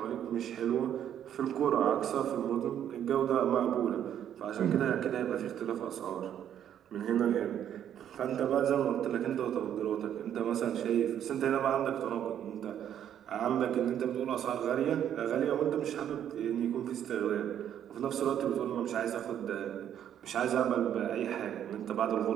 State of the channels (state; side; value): quieter; left; 10.0 dB